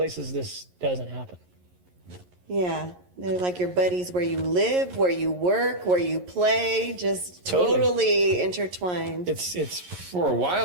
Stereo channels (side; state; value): left; late; 11 ms